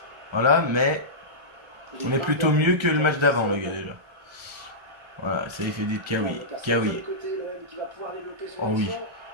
Voilà, mais... On est plutôt mieux que le match d'avant, les gars, déjà. Voilà, ça il fait dit Kawi. Kawi. Oh oui.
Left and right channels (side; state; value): left; late; 1.3 ms